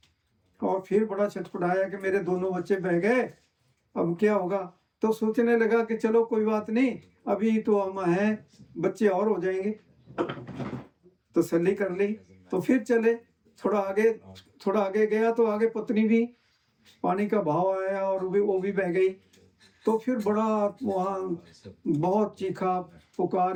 और फिर बड़ा छटपटाया कि मेरे दोनों बच्चे बह गए, अब क्या होगा। तो सोचने लगा कि चलो कोई बात नहीं, अभी तो हम हैं, बच्चे और हो जाएंगे। तसल्ली कर ली तो फिर चले। थोड़ा आगे गया तो आगे पत्नी भी, पानी का बहाव आया और वो भी बह गई। तो फिर बड़ा वहाँ बहुत चीखा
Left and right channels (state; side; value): identical; both; correlation 1.00